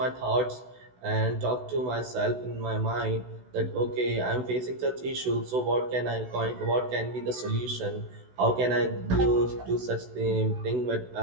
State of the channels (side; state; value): left; late; 16 ms